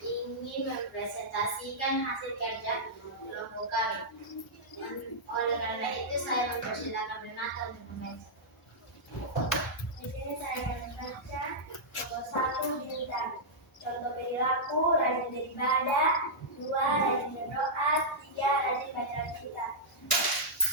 menyaksikan hasil kerja kelompok kami. Oleh karena itu saya mempersilakan Renata untuk membaca. Di sini saya akan membaca contoh 1 bintang. Contoh perilaku rajin beribadah, 2 rajin berdoa, 3 rajin baca kitab.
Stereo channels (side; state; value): both; normal; correlation -0.10